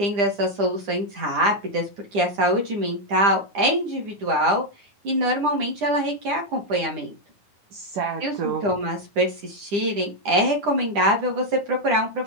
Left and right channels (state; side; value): late; left; 9.9 ms